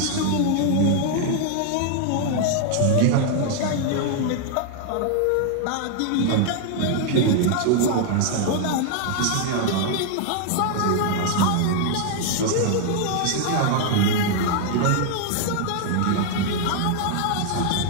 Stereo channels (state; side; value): different; both; correlation 0.00